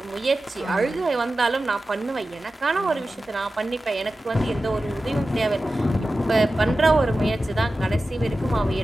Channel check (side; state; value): both; normal; correlation 0.94